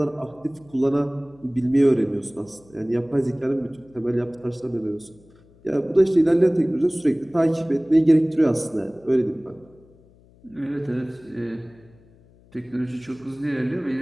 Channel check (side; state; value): left; noise; hum, 28 dB below the sound